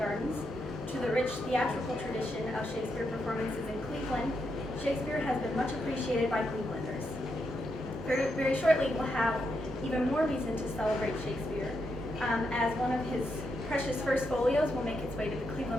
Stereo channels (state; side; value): normal; both; correlation 0.82